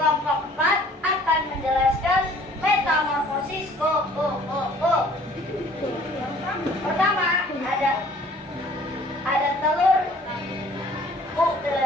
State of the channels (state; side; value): normal; both; correlation 0.54